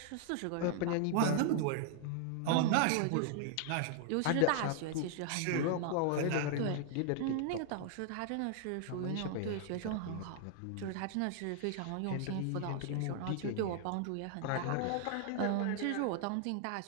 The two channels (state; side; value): different; both; correlation 0.00